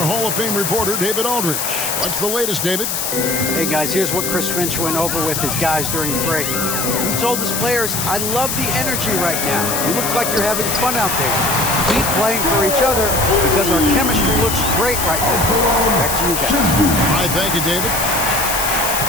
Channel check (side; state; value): left; noise; hiss, 2 dB below the sound